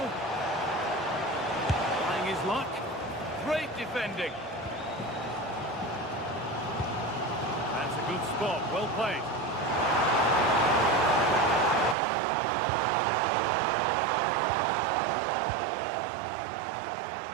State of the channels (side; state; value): left; drops out; at 12.0 s